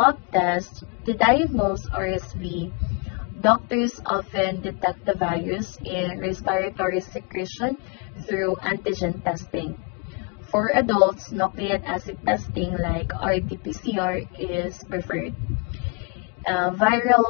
tests, to diagnose RSV, doctors often detect the virus in respiratory secretion through antigen testing. For adults, nucleic acid testing like RT-PCR is preferred. Viral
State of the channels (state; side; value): quieter; right; 33.7 dB